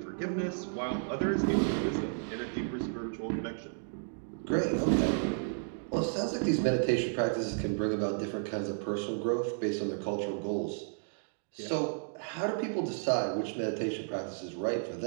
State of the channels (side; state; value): left; silent; digital silence